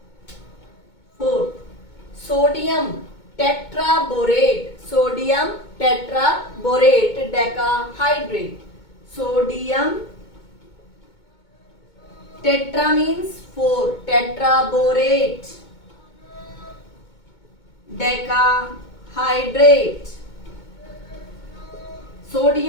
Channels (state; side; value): late; right; 2.2 ms